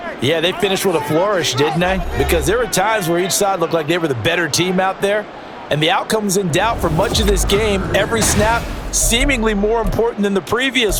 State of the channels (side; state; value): both; identical; correlation 1.00